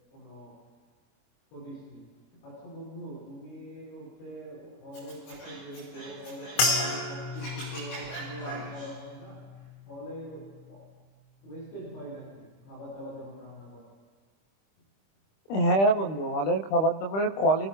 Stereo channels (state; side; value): late; right; 25 ms